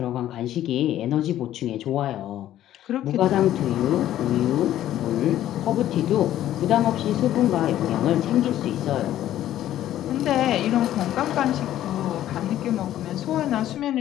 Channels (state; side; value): quieter; right; 12.6 dB